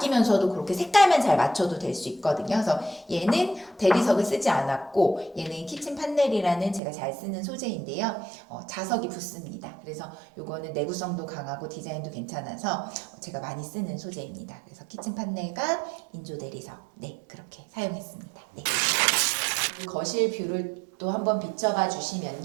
그렇게 색깔만 잘 맞춰도 될 수 있거든요. 그래서 얘는 대리석을 쓰지 않았고, 얘는 키친 판넬이라는 제가 잘 쓰는 소재인데요. 자석이 붙습니다. 그래서 요거는 내구성도 강하고 디자인도 괜찮아서 제가 많이 쓰는 소재입니다. 그래서 키친 판넬과 인조 대리석, 네, 그렇게 사용했습니다. 네. 거실 뷰를 또 한번 비춰봐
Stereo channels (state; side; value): drops out; left; at 6.8 s